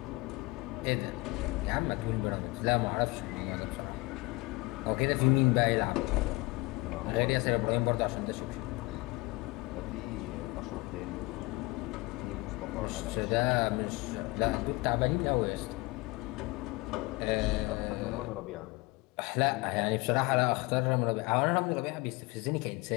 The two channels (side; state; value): right; quieter; 23.7 dB